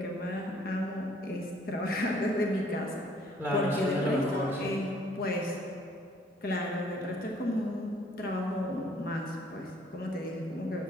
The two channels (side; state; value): both; normal; correlation 0.61